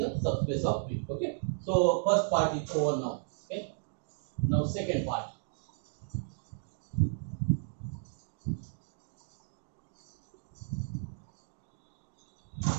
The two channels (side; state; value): left; silent; digital silence